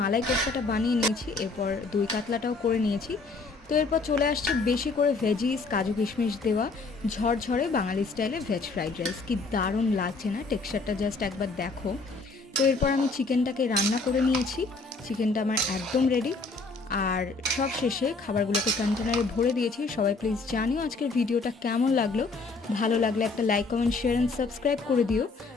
কোফতাটা বানিয়ে নিয়েছি, এরপর দই কাতলাটাও করে নিয়েছি। তো এরপর চলে আসছে বেশি করে ভেজিস, কাজু কিশমিশ দেওয়া ঝরঝরে বাঙালি স্টাইলে ভেজ ফ্রাইড রাইস। কি দারুণ লাগছে না? টেক্সচারটা জাস্ট একবার দেখো। তো এরপর আমি চিকেনটাকে রান্না করে নিয়েছি, চিকেনটা আমার একদম রেডি। আর সব শেষে খাবারগুলোকে কন্টেনারে ভরে দিয়েছি। সবাই প্লিজ জানিও আজকের ভিডিওটা কেমন লাগলো। ভালো লাগলে একটা like, comment, share and subscribe করে দিও।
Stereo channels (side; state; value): right; quieter; 3.9 dB